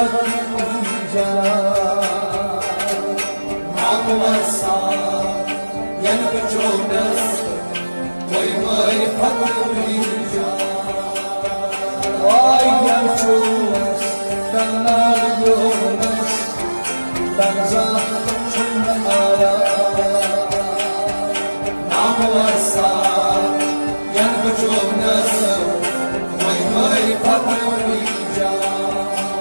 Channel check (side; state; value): both; inverted; correlation -1.00